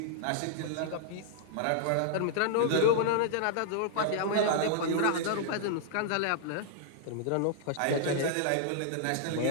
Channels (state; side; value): different; both; correlation -0.01